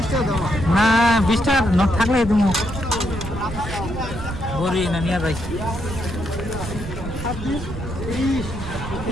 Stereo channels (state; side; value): noise; right; rumble, 8 dB below the sound